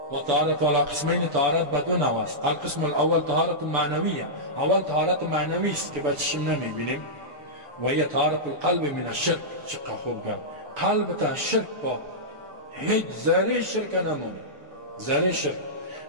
وطهارة على قسمين، طهارت بدون نواس. القسم الأول طهارة معنوية. أول طهارت معنوی است که بچشم نمیبینیم و هي طهارة القلب من الشرك. چقدر خوب گفت. قلب تا شرک با هیچ ذره شرک نمونه. ذره شرک،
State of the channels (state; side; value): late; left; 6.9 ms